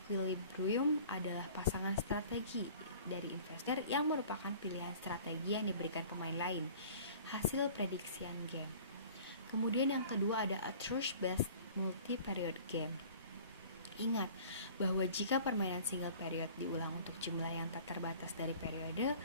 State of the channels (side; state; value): both; inverted; correlation -0.47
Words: adalah pasangan strategi dari investor yang merupakan pilihan strategi yang diberikan pemain lain, hasil prediksian game. Kemudian yang kedua ada a truth-based multi-period game. Ingat bahwa jika permainan single period diulang untuk jumlah yang tak terbatas dari periode,